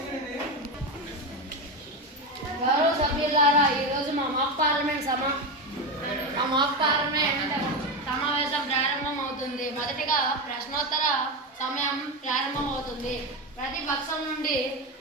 గౌరవ సభ్యులారా, ఈరోజు మా మాక్ పార్లమెంట్ సమావేశం ప్రారంభం అవుతుంది. మొదటిగా ప్రశ్నోత్తర సమయం ప్రారంభం అవుతుంది. ప్రతి పక్షం నుండి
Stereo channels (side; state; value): both; normal; correlation 0.15